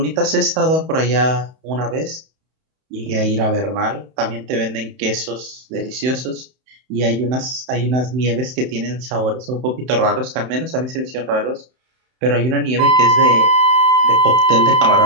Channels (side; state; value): left; late; 31 ms